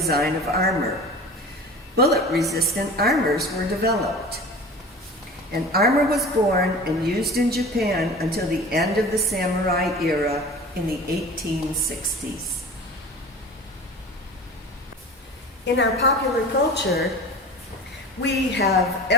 of armor. Bullet-resistant armors were developed, and armor was born and used in Japan until the end of the samurai era in the 1860s. In our popular culture, we have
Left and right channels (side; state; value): both; normal; correlation 0.37